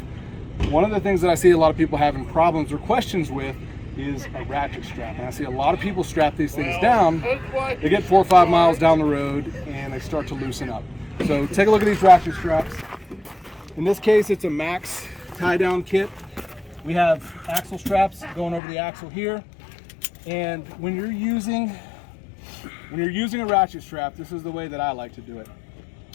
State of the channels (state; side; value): drops out; right; at 18.6 s